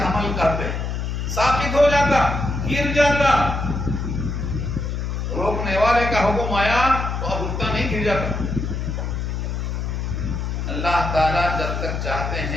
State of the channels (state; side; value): noise; left; hum, 2 dB below the sound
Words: حمل کرتے ہیں، ساقط ہو جاتا، گر جاتا۔ روکنے والے کا حکم آیا تو اب رکتا نہیں، گر جاتا۔ اللہ تعالیٰ جب تک چاہتے